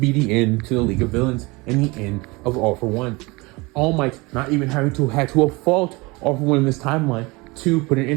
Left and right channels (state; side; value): quieter; left; 24.8 dB